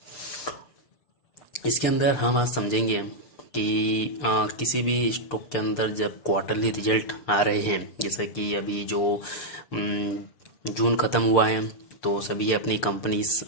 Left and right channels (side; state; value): right; late; 6.7 ms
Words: इसके अंदर हम आज समझेंगे कि किसी भी स्टॉक के अंदर जब क्वार्टरली रिजल्ट आ रहे हैं, जैसा कि अभी जो जून ख़त्म हुआ है, तो सभी अपनी कंपनीज